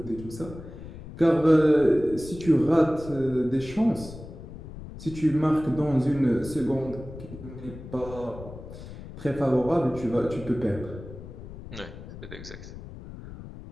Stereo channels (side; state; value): left; noise; rumble, 13 dB below the sound